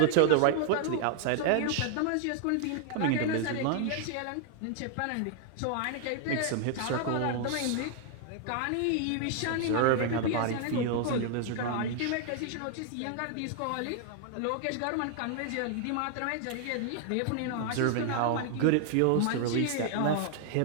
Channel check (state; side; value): different; both; correlation 0.00